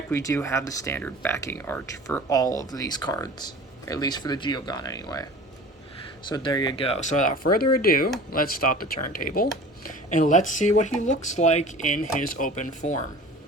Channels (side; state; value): both; normal; correlation 0.41